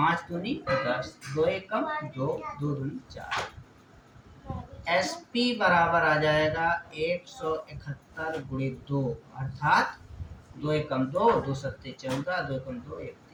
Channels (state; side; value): identical; both; correlation 1.00